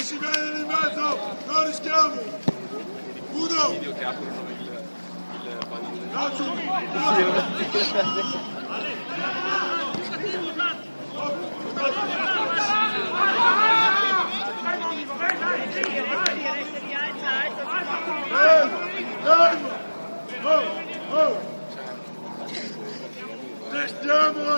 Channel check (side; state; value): both; inverted; correlation -1.00